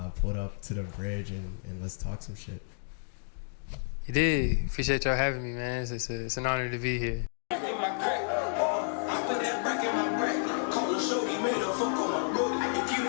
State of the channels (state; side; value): silent; right; digital silence